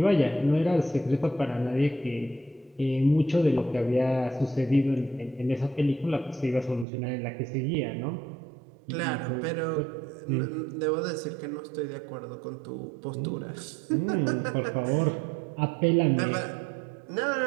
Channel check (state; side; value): drops out; left; at 6.9 s